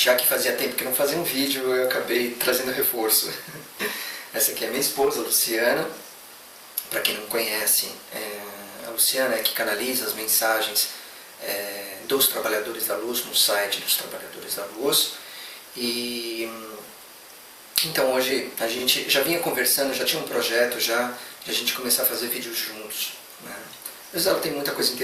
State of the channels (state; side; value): identical; both; correlation 1.00